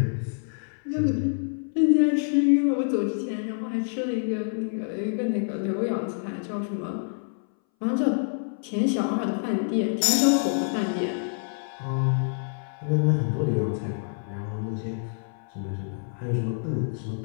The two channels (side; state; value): right; silent; 59 dB below the other